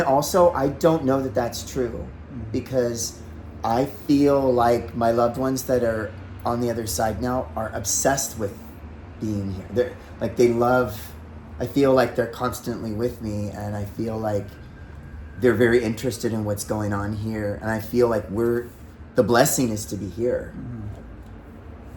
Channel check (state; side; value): identical; both; correlation 1.00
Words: also I don't know that that's true, because I feel like my loved ones that are on the other side now are obsessed with being here. I feel like they're constantly with me, and I feel like they're very interested in what's going on here, and I feel like the blessing is to be here. Mm-hmm.